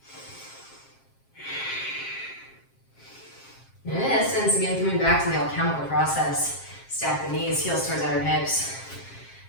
In essence, again, coming back to the alchemical process, stack the knees, heels towards outer hips.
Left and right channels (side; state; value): right; late; 7.5 ms